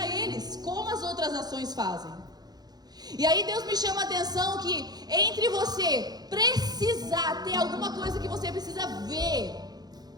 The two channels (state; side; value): late; left; 0.19 ms